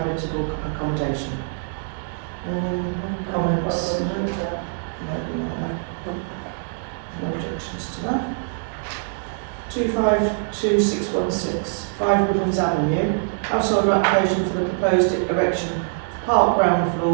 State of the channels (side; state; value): left; silent; digital silence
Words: accommodation. Any comments? No objections to that. 252616 5 Woodlands Avenue. Household application for the proposed erection of park ground